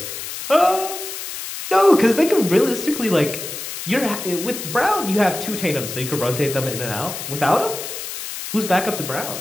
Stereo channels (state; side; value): noise; left; hiss, 8 dB below the sound